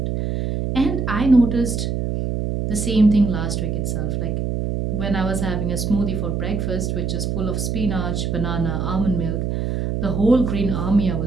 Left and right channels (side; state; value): right; noise; hum, 1 dB below the sound